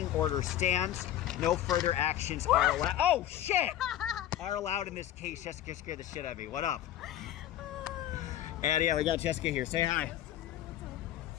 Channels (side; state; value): right; quieter; 12.3 dB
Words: order stands. No further actions are allowed. Oh, shit! Are allowed in this case. Jessica scared the shit out of me. What up? And yeah, we got Jessica here. Say hi.